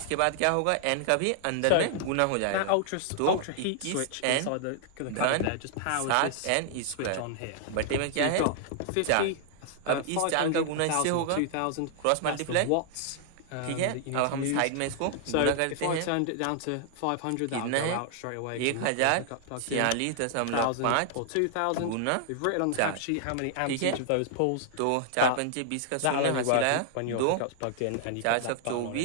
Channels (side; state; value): both; different; correlation -0.01